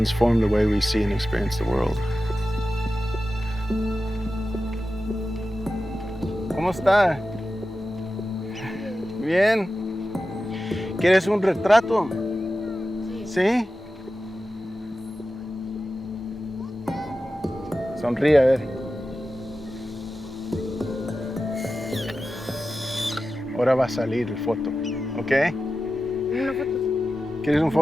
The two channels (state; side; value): normal; both; correlation 0.93